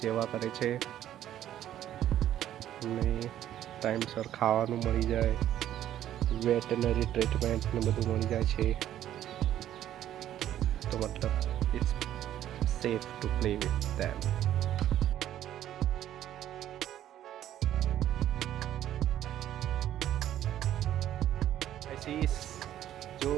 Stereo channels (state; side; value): quieter; left; 11.8 dB